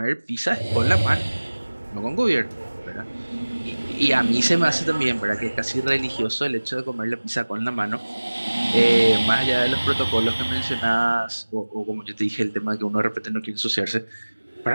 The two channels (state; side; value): inverted; both; correlation -1.00